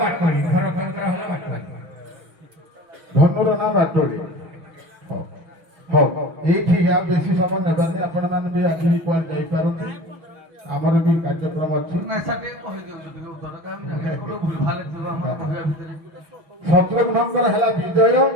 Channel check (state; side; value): late; left; 6.1 ms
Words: ବାଟୁଳି ଭରତଙ୍କର ହେଲା ବାଟୁଳି। ଧନୁର ନାଁ ବାଟୋଳି। ହଉ ହଉ ଏଇଠି ଆଉ ବେଶୀ ସମୟ ନେବାନି ଆପଣମାନେ ବି ଆଜି ବି କୁଆଡ଼େ ଯାଇପାରନ୍ତି ଆମର ବି କାର୍ଯ୍ୟକ୍ରମ ଅଛି। ନାଇଁ ସାର୍ ଟିକେ କହିଦିଅନ୍ତୁ ଟିକେ ଉତ୍ତର କାରଣ କୋଉଠି ଭୁଲ ଭାଲ ଥିବ ଆମର କହିବା ଭିତରେ। ଶତ୍ରୁଘ୍ନଙ୍କର ହେଲା ବିଜୟ